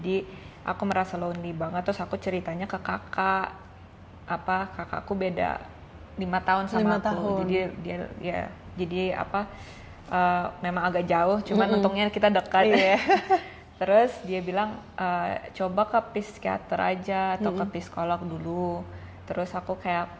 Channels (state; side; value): identical; both; correlation 1.00